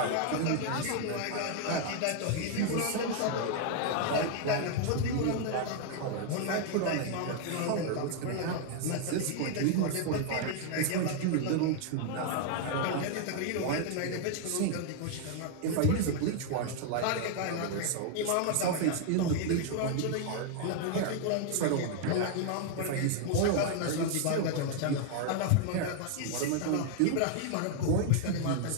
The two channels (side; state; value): both; different; correlation 0.00